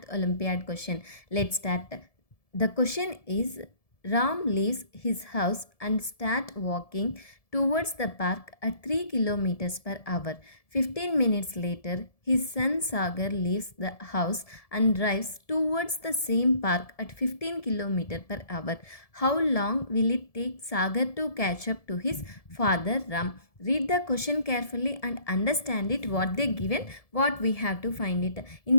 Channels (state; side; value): late; right; 1.7 ms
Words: Olympiad question. Let's start. The question is Ram leaves his house and start walking towards the park at 3 kilometers per hour. 15 minutes later, his son Sagar leaves the house and drives towards the same park at 15 kilometers per hour. How long will it take Sagar to catch up to his father Ram? Read the question carefully and understand it what they given, what we have to find it. In